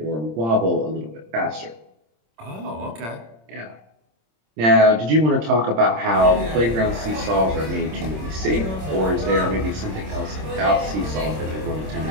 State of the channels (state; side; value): late; left; 26 ms